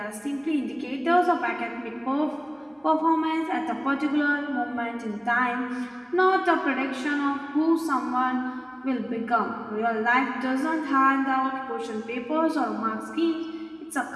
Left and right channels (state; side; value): identical; both; correlation 1.00